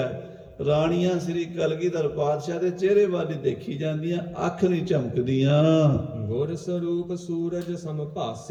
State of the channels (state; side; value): identical; both; correlation 1.00